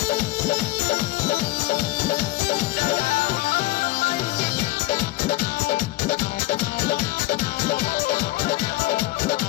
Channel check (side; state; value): right; quieter; 18.4 dB